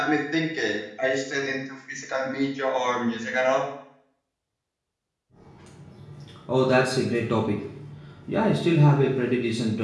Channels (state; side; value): identical; both; correlation 1.00